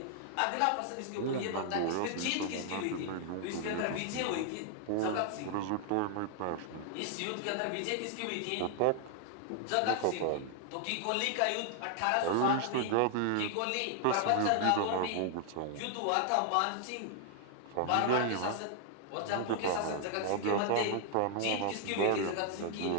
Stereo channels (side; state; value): both; different; correlation 0.00